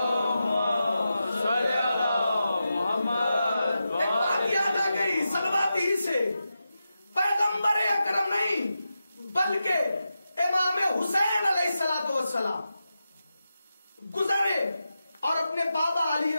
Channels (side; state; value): both; inverted; correlation -0.90